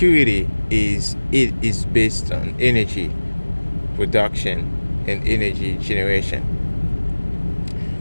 is based on energy production and energy generation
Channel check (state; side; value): inverted; both; correlation -1.00